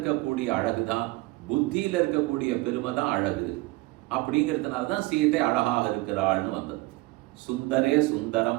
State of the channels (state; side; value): quieter; left; 21.3 dB